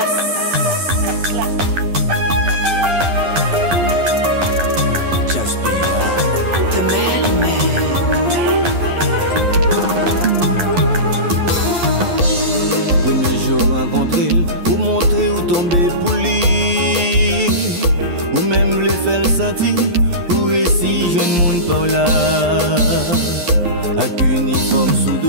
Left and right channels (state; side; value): late; left; 11 ms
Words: Jasper, The Mailman. Premier jour rencontré, ou montrer ou tomber pour lui, ou même le faire sentir, ou récit jeune monde par là. Avec uniforme sous